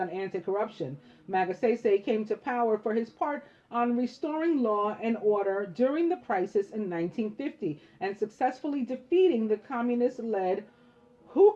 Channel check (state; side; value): identical; both; correlation 1.00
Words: on anti-corruption. Magsaysay came to power for his part on restoring law and order during the crisis in 1950 and successfully defeating the communist-led